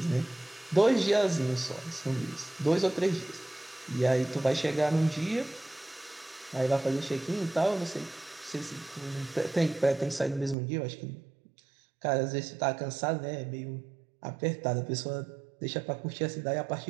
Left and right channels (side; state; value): left; drops out; at 10.6 s